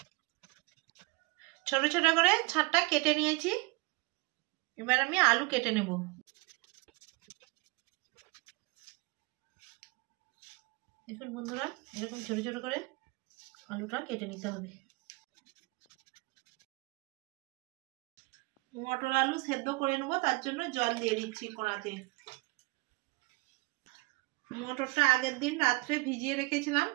ছোট ছোট করে ছাঁটটা কেটে নিয়েছি। এবার আমি আলু কেটে নেব। দেখুন বন্ধুরা, এরকম ছোট ছোট করে আলুটা কেটে নিতে হবে। মটর আলু সেদ্ধ করে নেবো, তার জন্য জল দিয়ে দিচ্ছি কড়াতে। মটরটা আগের দিন রাত্রে ভিজিয়ে রেখেছিলাম,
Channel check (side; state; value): left; quieter; 25.4 dB